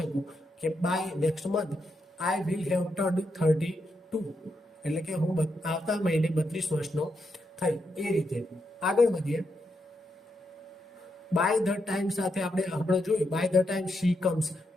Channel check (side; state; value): both; normal; correlation 0.82